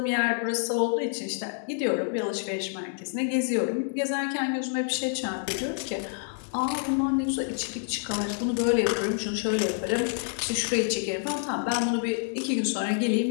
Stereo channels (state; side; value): silent; right; 60 dB below the other